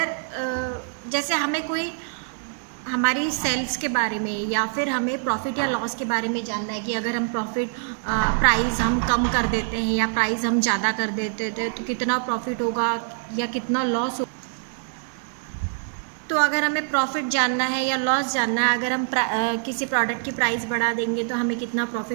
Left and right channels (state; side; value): silent; left; digital silence